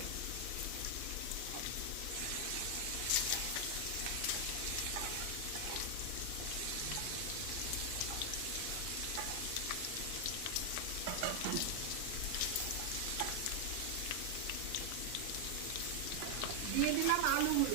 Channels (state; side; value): different; both; correlation 0.00